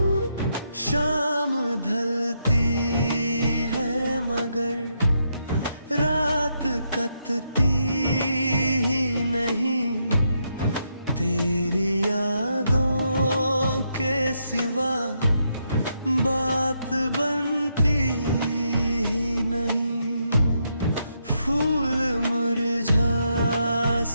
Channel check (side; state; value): both; inverted; correlation -0.79